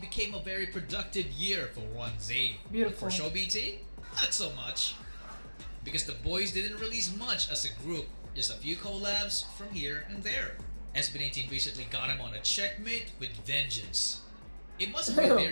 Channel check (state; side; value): inverted; both; correlation -1.00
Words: became a very productive year for 1Z. Beautiful. For Show BT, not so much. Because the boys didn't release much as a group, just a few collabs from here and there. SB19 recently got him on a checkmate with vengeance. It must have been